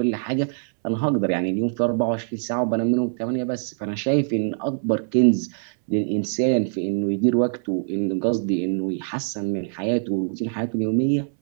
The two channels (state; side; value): silent; left; 63 dB below the other